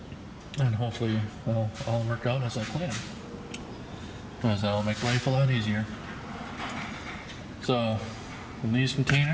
And hopefully it'll all work out as I plan, because that'll make life a lot easier. So in these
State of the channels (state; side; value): identical; both; correlation 1.00